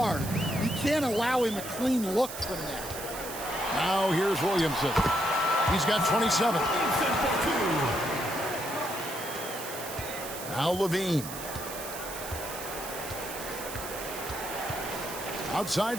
You can't allow him a clean look from that. Now here's Williamson. He's got 27. Now Levine.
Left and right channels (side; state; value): right; noise; hiss, 9 dB below the sound